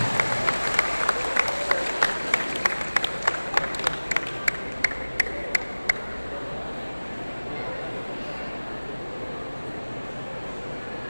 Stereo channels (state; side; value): inverted; both; correlation -1.00